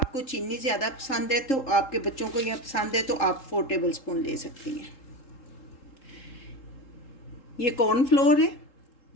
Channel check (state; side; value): late; right; 3.7 ms